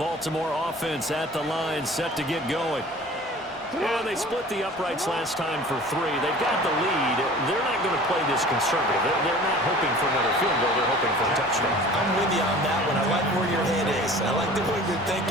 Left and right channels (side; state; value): both; normal; correlation 0.44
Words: Baltimore offense at the line, set to get going. Yeah, they split the uprights last time for 3. They've got the lead. They're not going to play this conservative. They're not hoping for another field goal. They're hoping for a touchdown. I'm with you on that one. I like where your head is. I like the way you're